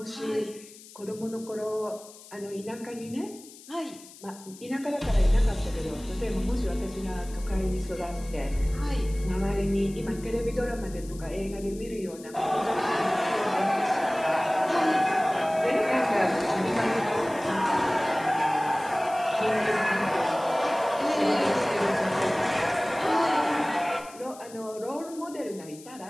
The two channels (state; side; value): noise; left; hiss, 19 dB below the sound